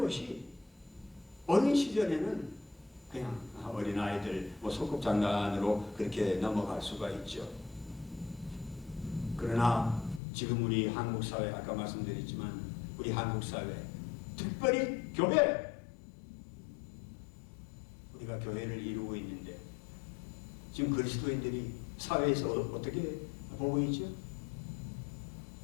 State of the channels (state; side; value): drops out; right; at 10.2 s